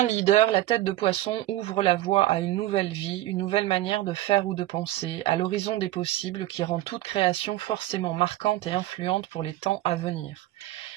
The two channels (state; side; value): quieter; left; 15.2 dB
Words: leader, la tête de poisson ouvre la voie à une nouvelle vie, une nouvelle manière de faire ou de penser, à l'horizon des possibles qui rend toute création forcément marquante et influente pour les temps à venir.